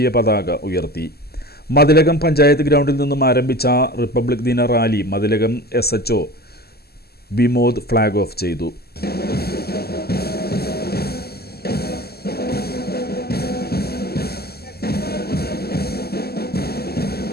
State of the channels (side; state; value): right; late; 0.46 ms